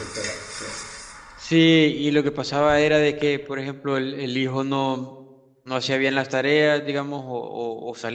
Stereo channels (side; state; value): both; identical; correlation 1.00